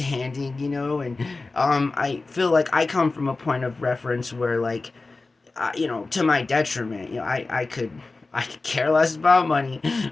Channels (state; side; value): quieter; right; 3.6 dB